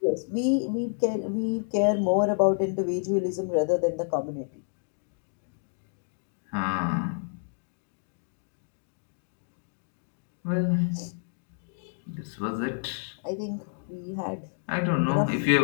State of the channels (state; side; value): silent; right; digital silence